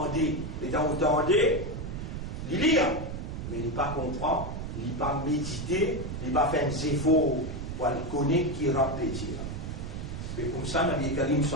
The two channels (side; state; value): right; noise; rumble, 6 dB below the sound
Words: et dans vous tendez, il lit, mais il n'est pas comprend, il n'est pas médité, il n'est pas fait un efforts pour le connaître qui répète. Et comme ça, Nabi Karim